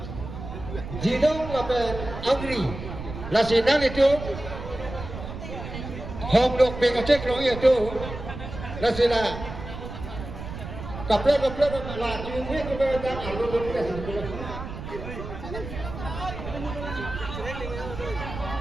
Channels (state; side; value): noise; right; rumble, 9 dB below the sound